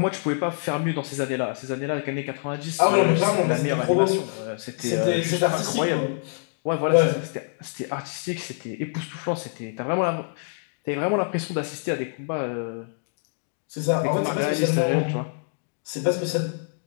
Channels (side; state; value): right; silent; digital silence